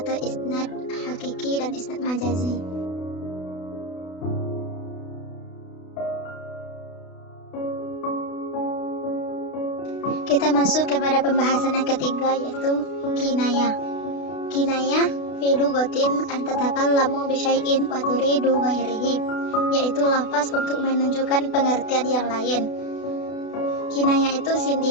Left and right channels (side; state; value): right; late; 32 ms